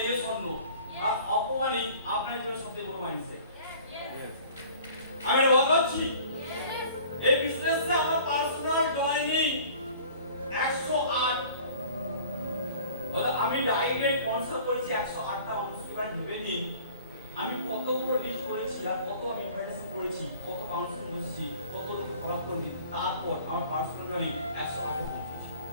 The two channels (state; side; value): inverted; both; correlation -0.48